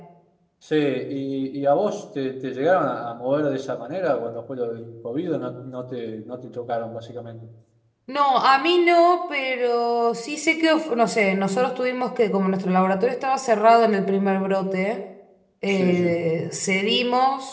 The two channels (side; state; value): both; identical; correlation 1.00